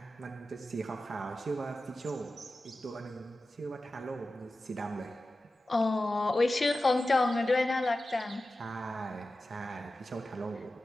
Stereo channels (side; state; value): both; normal; correlation 0.94